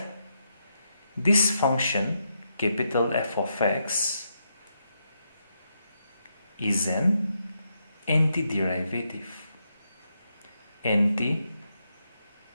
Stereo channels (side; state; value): both; inverted; correlation -0.81